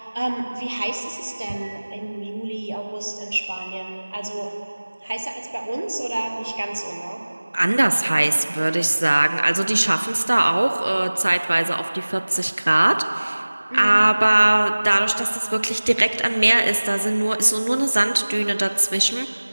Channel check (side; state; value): both; inverted; correlation -1.00